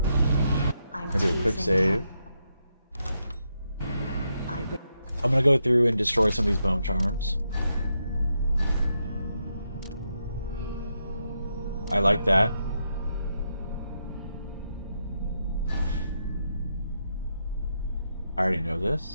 I'm gonna do a quick save. I'm gonna go through and destroy some of these bone charms. I like that. I already know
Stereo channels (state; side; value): inverted; both; correlation -0.82